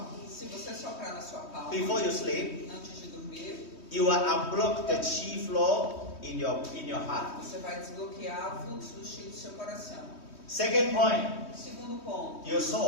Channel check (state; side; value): late; right; 3.2 ms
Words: Se você soprar na sua palma before you sleep, antes de dormir, you will unblock the chi flow in your heart. você vai desbloquear o fluxo do chi do seu coração. Second point, Segundo ponto, your